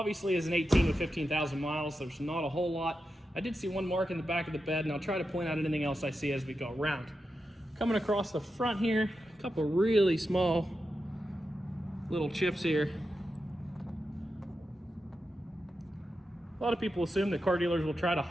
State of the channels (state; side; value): normal; both; correlation 0.89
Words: as an 18 with 15,000 miles, there's not a whole lot. I did see one mark in the back of the bed, and I'll try to point out anything else I see as we go around. Coming across the front here, a couple really small little chips here. A lot of people assume that car dealers will try to